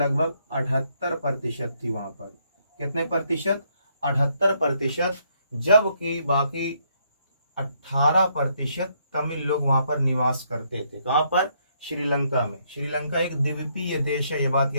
78% थी। वहां पर कितने प्रतिशत? 78%, जबकि बाकी 18% तमिल लोग वहां पर निवास करते थे। कहां पर? श्रीलंका में। श्रीलंका एक द्वीपीय देश है, ये बात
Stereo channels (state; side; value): inverted; both; correlation -0.72